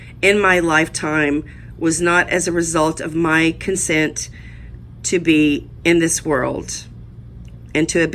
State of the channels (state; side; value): identical; both; correlation 1.00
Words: in my lifetime was not as a result of my consent to be in this world and to have